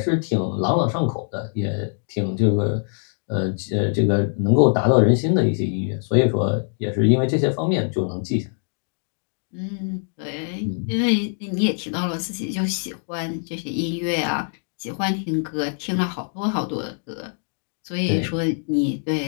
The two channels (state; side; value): silent; right; digital silence